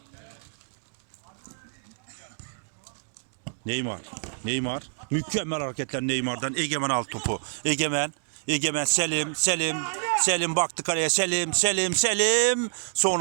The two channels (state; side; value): silent; left; digital silence